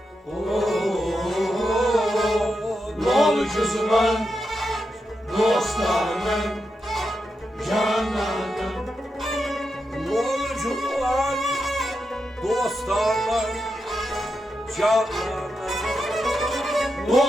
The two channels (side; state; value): both; normal; correlation 0.86